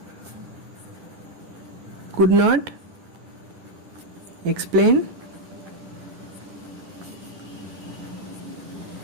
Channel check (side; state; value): left; late; 11 ms